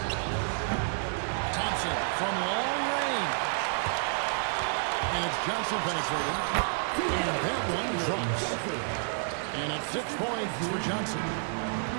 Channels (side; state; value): left; silent; digital silence